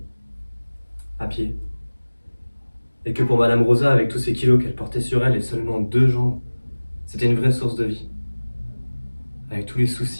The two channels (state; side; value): inverted; both; correlation -1.00